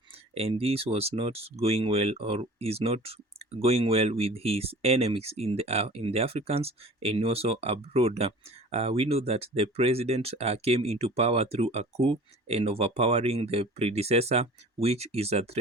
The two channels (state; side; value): normal; both; correlation 0.43